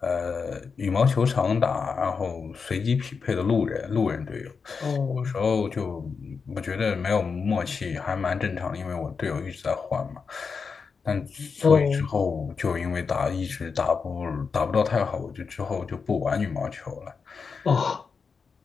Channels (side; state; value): right; quieter; 5.4 dB